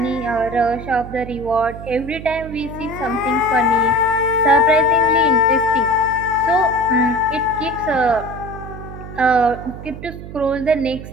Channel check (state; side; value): noise; right; hum, 12 dB below the sound